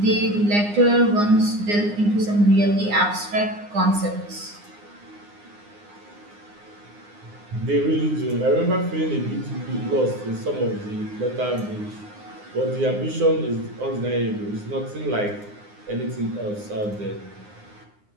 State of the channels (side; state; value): left; late; 9.7 ms